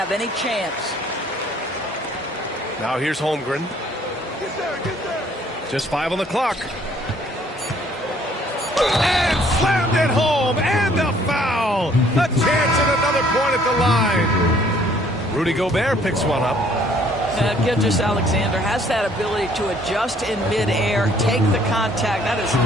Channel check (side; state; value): both; normal; correlation 0.61